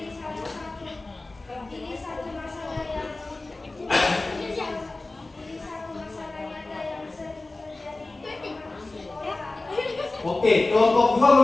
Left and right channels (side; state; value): right; quieter; 3.1 dB